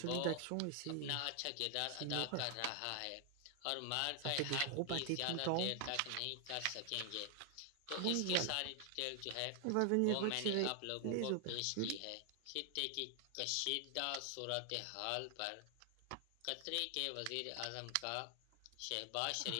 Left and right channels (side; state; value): both; different; correlation 0.00